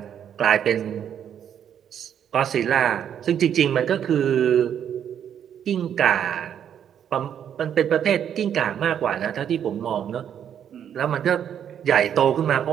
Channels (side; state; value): left; quieter; 9.1 dB